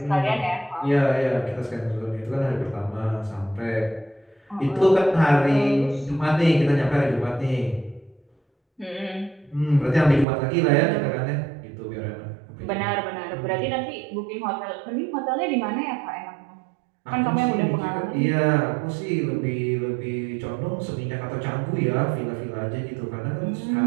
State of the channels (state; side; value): drops out; left; at 10.2 s